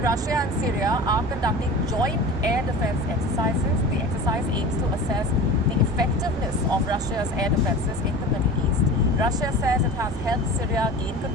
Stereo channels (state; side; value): normal; both; correlation 0.35